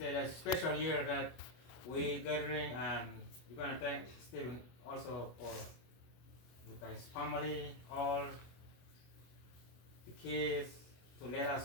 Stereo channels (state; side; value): late; right; 25 ms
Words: it's a special year that we gathering, and we're gonna thank Stephen also for with his family, all the kids, to let